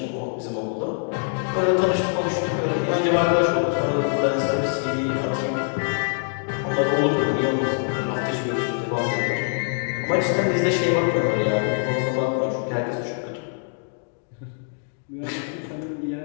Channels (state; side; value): silent; right; 63 dB below the other